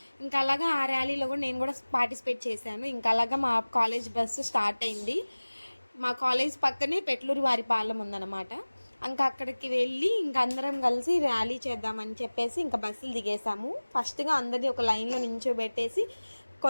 ఇంకా అలాగా ఆ ర్యాలీలో కూడా నేను కూడా పార్టిసిపేట్ చేశాను. ఇంకా అలాగా మా కాలేజ్ బస్సు స్టార్ట్ అయింది. మా కాలేజ్ పక్కనే పెట్లూరి వారిపాలెం ఉందన్నమాట. ఇంకా అక్కడికి వెళ్ళి ఇంకా అందరం కలిసి ర్యాలీ చేద్దామని చెప్పేసి ఇంకా బస్సులు దిగేసాము. ఫస్ట్గా అందరినీ ఒక లైన్లో నించోబెట్టేసి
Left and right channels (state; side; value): inverted; both; correlation -1.00